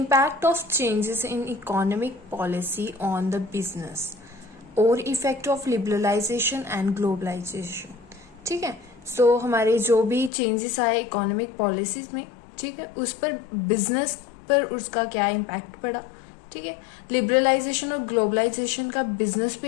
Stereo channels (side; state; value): right; drops out; at 10.3 s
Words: of changes in economic policy on the business और effect of liberalization and globalization. ठीक है, so हमारे जो भी changes आए economic policies में, ठीक है, उस पर business पर उसका क्या impact पड़ा, ठीक है, liberalization और globalization का business